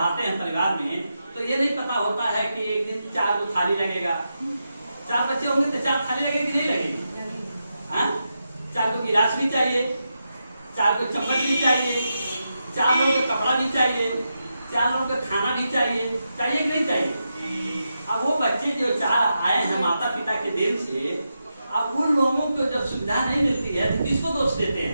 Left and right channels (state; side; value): inverted; both; correlation -0.87